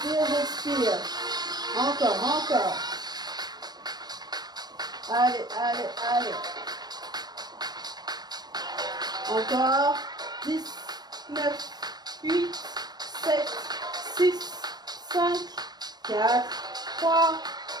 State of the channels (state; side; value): late; left; 0.19 ms